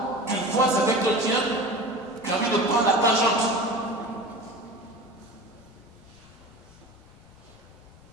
tu vois avec chrétien, tu as envie de prendre la tangente.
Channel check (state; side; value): normal; both; correlation 0.34